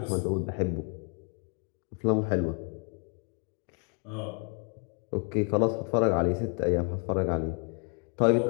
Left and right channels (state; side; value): quieter; right; 35.3 dB